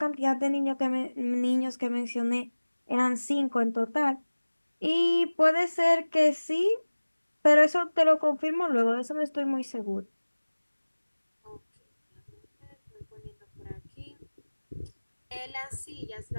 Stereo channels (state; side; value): inverted; both; correlation -1.00